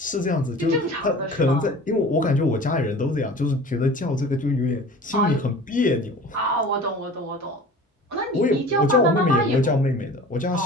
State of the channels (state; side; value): normal; both; correlation 0.41